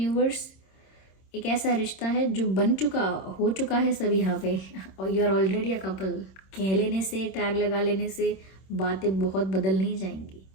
एक ऐसा रिश्ता है जो हो चुका है सब यहाँ पे, और you are already a couple. कह लेने से, टैग लगा लेने से बातें बहुत बदल नहीं जाएंगी,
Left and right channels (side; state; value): right; late; 26 ms